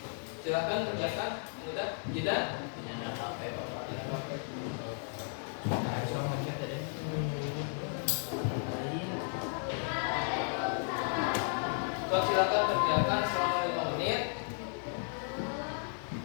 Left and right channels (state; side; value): silent; right; 55 dB below the other